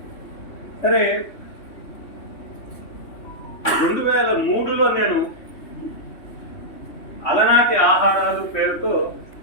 సరే, 2003లో నేను అలనాటి ఆహారాలు పేరుతో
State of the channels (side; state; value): right; late; 3.1 ms